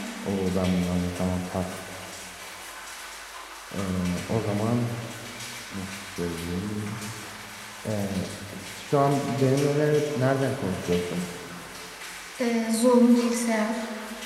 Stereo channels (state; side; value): identical; both; correlation 1.00